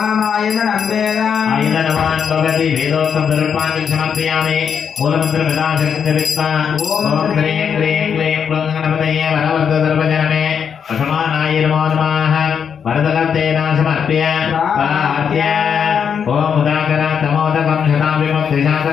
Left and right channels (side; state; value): right; quieter; 7.2 dB